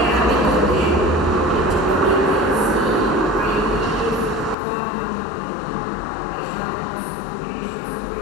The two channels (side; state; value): right; drops out; at 4.5 s